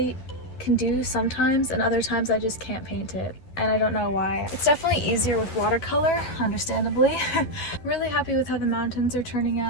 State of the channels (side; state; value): right; late; 11 ms